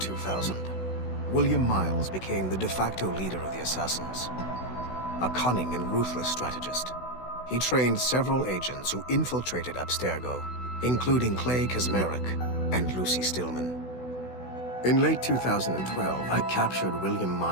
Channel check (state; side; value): late; right; 16 ms